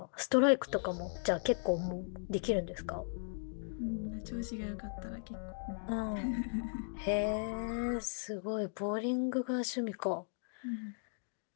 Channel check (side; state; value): right; silent; digital silence